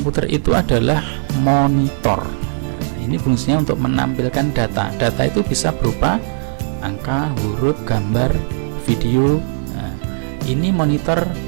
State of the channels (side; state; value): left; silent; digital silence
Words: itu adalah monitor. Ini fungsinya untuk menampilkan data. Data itu bisa berupa angka, huruf, gambar, video. Nah, ini monitor,